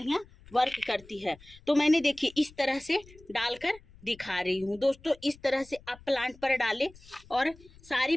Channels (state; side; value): noise; left; rumble, 23 dB below the sound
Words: वर्क करती है। तो मैंने देखिए इस तरह से डालकर दिखा रही हूँ दोस्तों। इस तरह से आप प्लांट पर डालें, और सारी